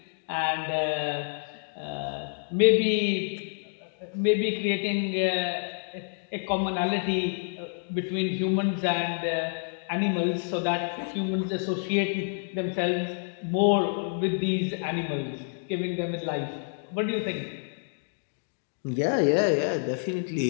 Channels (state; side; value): silent; right; digital silence